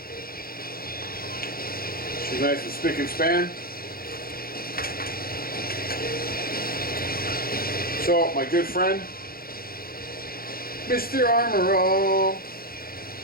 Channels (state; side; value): late; right; 0.43 ms